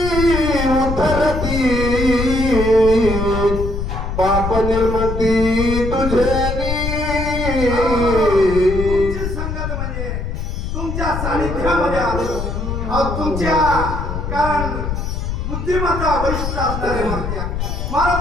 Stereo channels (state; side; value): noise; left; rumble, 3 dB below the sound